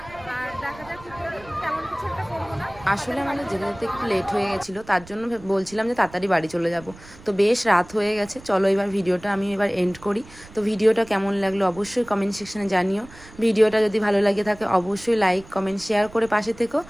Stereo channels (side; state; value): right; noise; rumble, 21 dB below the sound